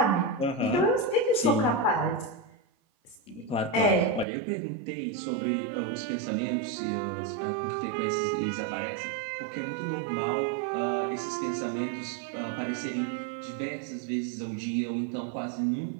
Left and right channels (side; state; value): left; drops out; at 4.2 s